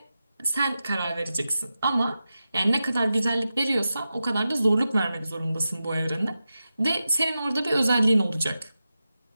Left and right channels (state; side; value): inverted; both; correlation -0.92